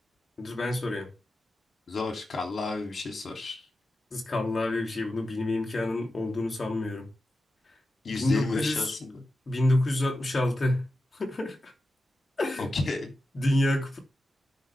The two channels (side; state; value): both; normal; correlation 0.91